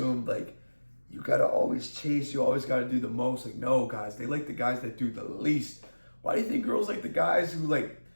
like you gotta always chase, you always gotta do the most. Like, no, guys, they like the guys that do the least. Why do you think girls like the guys who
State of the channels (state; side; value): inverted; both; correlation -1.00